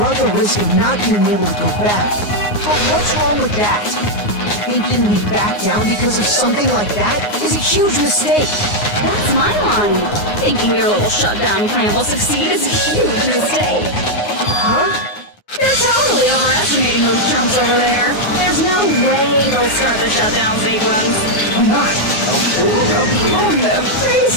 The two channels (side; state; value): right; late; 9.6 ms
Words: the risk of not being able to go back. But what's wrong with that? Thinking we back down because of something like that is a huge mistake. That's my line. Thinking your little shutdown plan will succeed is a huge mistake. Huh? You're totally overestimating those chumps over there. There's no way they'll start the shutdown sequence. Why not? On their